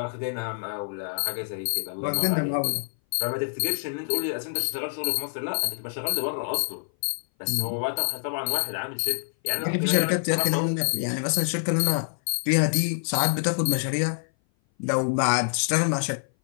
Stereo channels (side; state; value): right; silent; 58 dB below the other